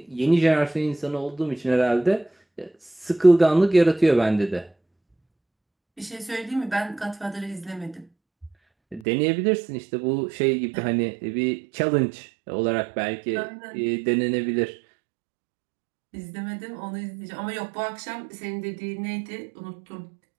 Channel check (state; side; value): drops out; left; at 9.0 s